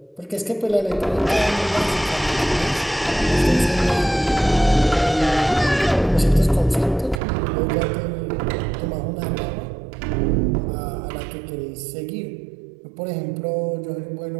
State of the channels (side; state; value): left; drops out; at 7.2 s